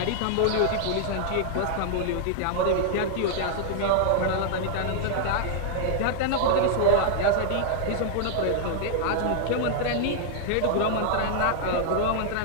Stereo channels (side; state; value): both; different; correlation -0.01